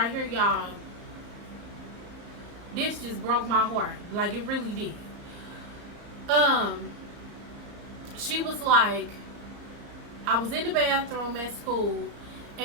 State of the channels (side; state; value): left; late; 34 ms